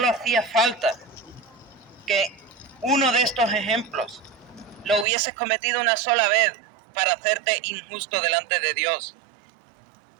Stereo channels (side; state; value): left; drops out; at 5.1 s